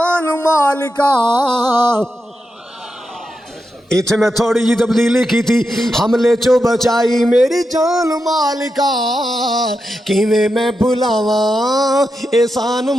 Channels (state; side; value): normal; both; correlation 0.87